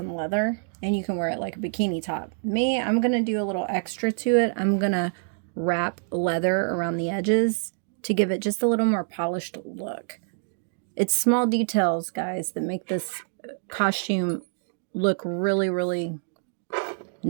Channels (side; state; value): left; silent; digital silence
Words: leather, and you can wear it like a bikini top. Me, I'm going to do a little extra to it. I'm going to wrap leather around the edges to give it just a little more polished look. It's small details, guys, that make this costume look really, really